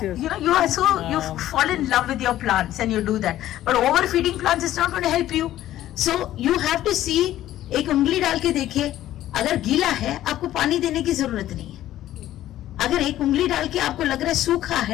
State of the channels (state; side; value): quieter; right; 13.5 dB